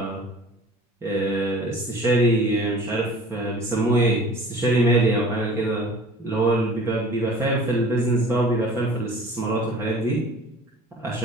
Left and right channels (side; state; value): both; normal; correlation 0.46